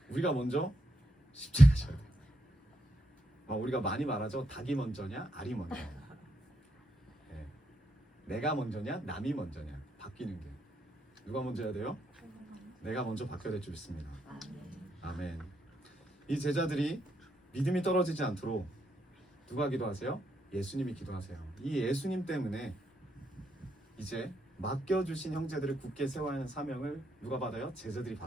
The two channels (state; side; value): normal; both; correlation 0.79